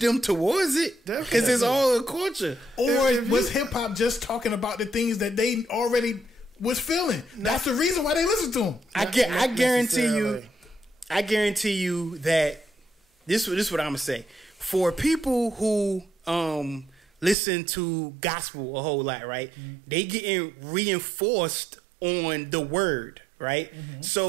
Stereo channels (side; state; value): left; drops out; at 17.4 s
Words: towards it because it's all a culture. Or was hip hop just talking about the things that they already was feeling? That's the reason why they listen to them. I guarantee you that this is what I'm gonna say. For people who listen to gospel a whole lot, right? Mm-hmm. They getting reinforced on the word. Right, mm-hmm.